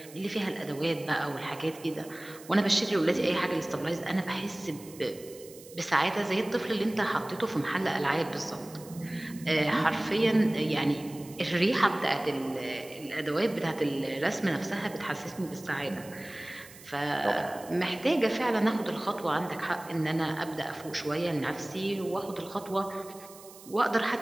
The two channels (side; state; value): right; noise; hiss, 19 dB below the sound